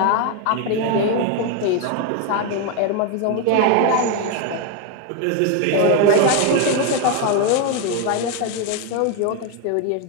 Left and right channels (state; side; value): different; both; correlation 0.01